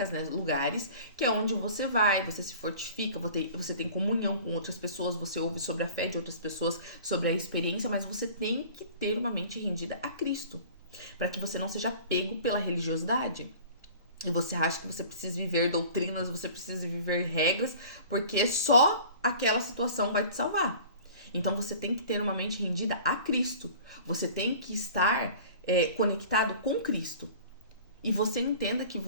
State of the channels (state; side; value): inverted; both; correlation -0.44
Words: né, lugares, que é onde você vai, você se fortifica, você tem comunhão com outras pessoas, você ouve sobre a fé de outras pessoas, sobre a experiência, mas você tem que ter uma mente rendida a Cristo, para que você não seja pego pela religiosidade. E você acha que você precisa viver doutrinas, você precisa viver regras, porque só aquela situação vai te salvar. Então você tem que ter uma mente rendida a Cristo, você tem que estar conectado com Cristo. E você entenda que